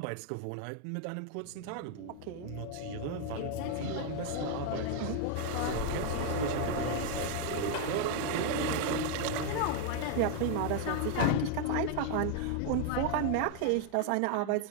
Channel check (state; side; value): different; both; correlation 0.00